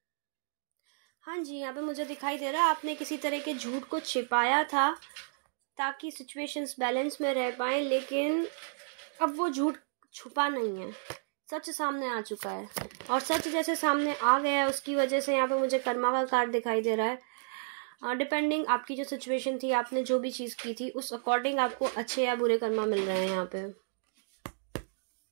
हाँ जी, यहाँ पे मुझे दिखाई दे रहा है आपने किसी तरह के झूठ को छिपाया था ताकि सिचुएशंस बैलेंस में रह पाए, लेकिन अब वो झूठ छुपा नहीं है, सच सामने आ चुका है, और सच जैसे सामने आ गया है उसकी वजह से यहाँ पे मुझे कर्मा का कार्ड दिखाई दे रहा है। डिपेंडिंग आपकी जो सिचुएशन थी, आपने जो भी चीज़ की थी, उस अकॉर्डिंग आपको अच्छे या बुरे कर्मा मिल रहे हैं यहाँ पे।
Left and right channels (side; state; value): left; silent; digital silence